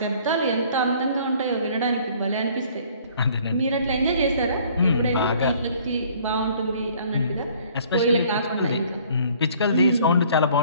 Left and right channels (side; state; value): both; inverted; correlation -0.57